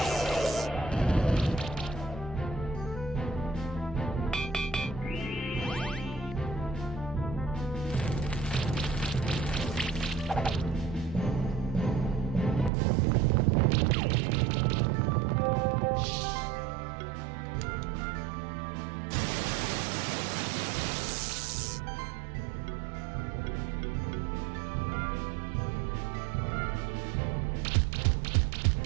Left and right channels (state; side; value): drops out; left; at 12.7 s